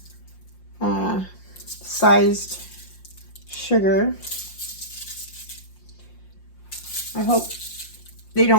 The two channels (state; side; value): late; right; 5.6 ms